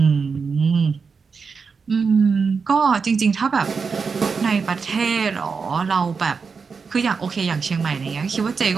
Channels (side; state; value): left; quieter; 5.3 dB